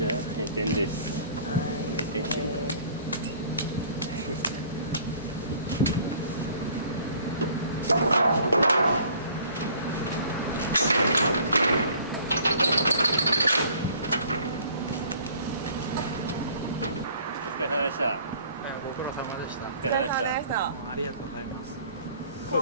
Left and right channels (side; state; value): both; inverted; correlation -0.54